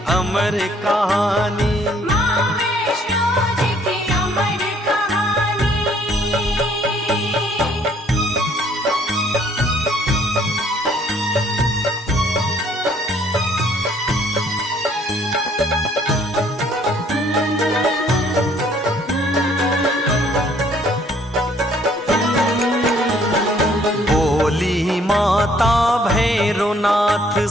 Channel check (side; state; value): both; normal; correlation 0.62